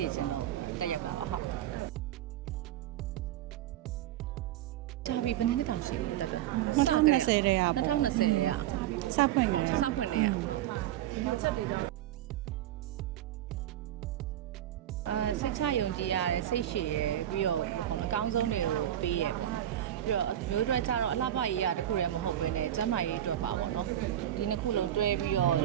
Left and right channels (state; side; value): quieter; left; 12.1 dB